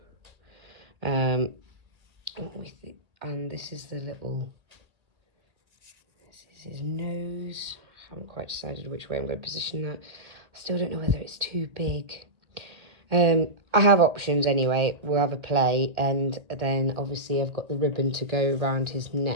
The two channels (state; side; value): late; left; 1.8 ms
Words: And this is the little, this is his nose. I haven't quite decided which way I'm going to position that. I still don't know whether it's too big. I have options anyway. We'll have a play, and then obviously I've got the ribbon to go around his